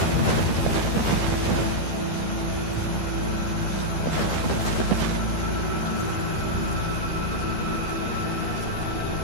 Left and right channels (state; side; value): late; right; 12 ms